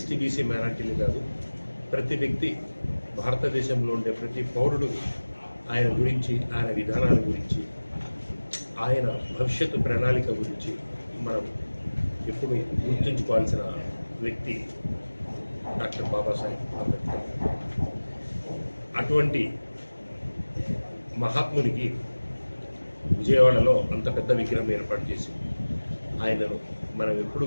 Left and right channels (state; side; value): inverted; both; correlation -1.00